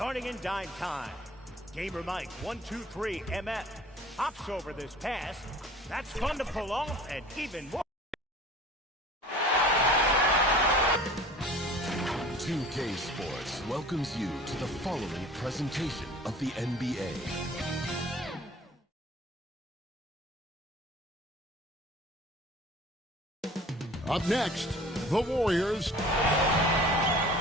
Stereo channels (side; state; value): both; normal; correlation 0.46